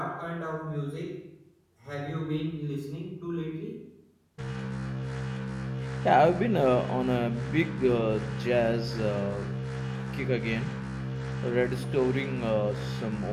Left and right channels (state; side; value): identical; both; correlation 1.00